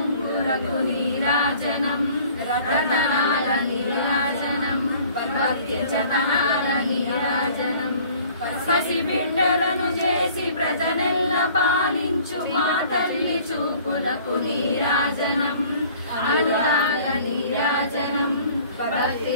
నీరాజనం రతనాల నీరాజనం భక్తి జతనాల నీరాజనం పసిబిడ్డలను చేసి ప్రజనెల్ల పాలించు మా తల్లి చూపులకు నీరాజనం అనురాగ నీరాజనం భక్తి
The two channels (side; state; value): both; inverted; correlation -0.52